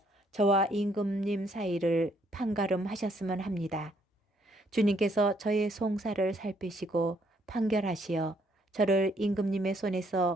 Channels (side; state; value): both; normal; correlation 0.69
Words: 저와 임금님 사이를 판가름하셨으면 합니다. 주님께서 저의 송사를 살피시고 판결하시어 저를 임금님의